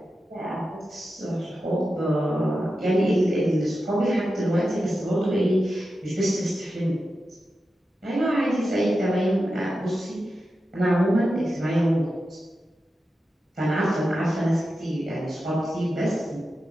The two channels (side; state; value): both; normal; correlation 0.91